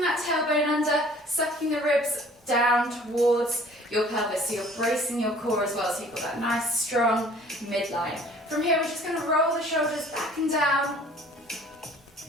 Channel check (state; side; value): normal; both; correlation 0.52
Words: that tailbone under, sucking the ribs down towards your pelvis. So you're bracing your core as well, so you've got that nice strong midline. From here, we're just going to roll the shoulders back and down,